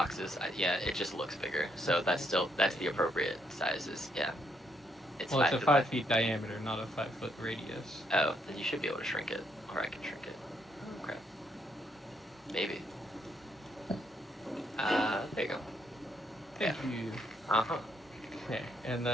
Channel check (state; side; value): normal; both; correlation 0.73